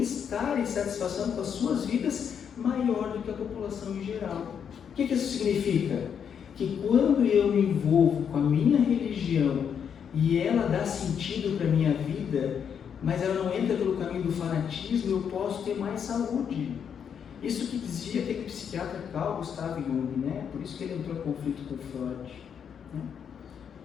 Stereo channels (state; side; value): quieter; right; 7.7 dB